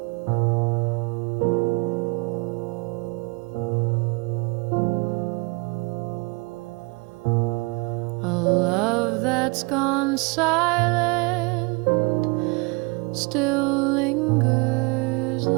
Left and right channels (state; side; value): quieter; left; 28.1 dB